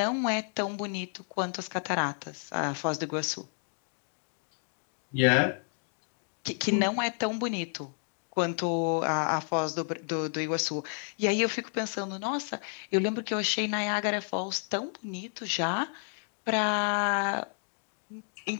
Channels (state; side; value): silent; right; 56 dB below the other